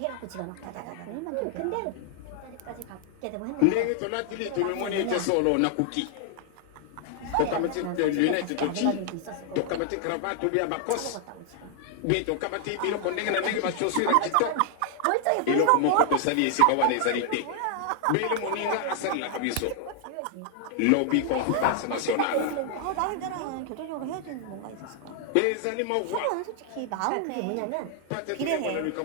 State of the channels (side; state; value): both; different; correlation 0.00